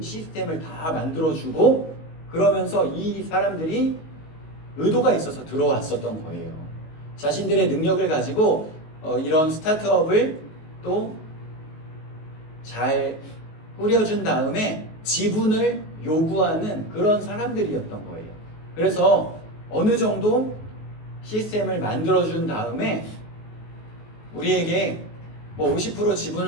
시스템을 다 만들어주고 그러면서 이 사람들이 의도가 있어서 들어왔었던 거예요. 자신들의 능력을 가지고 이런 스타트업을 또 잘 꾸려준 다음에 지분을 요구하는 그런 사람들이었던 거예요. 그래서 어느 정도 시스템을 만들어준 다음에 우리에게 50%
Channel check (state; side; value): late; right; 19 ms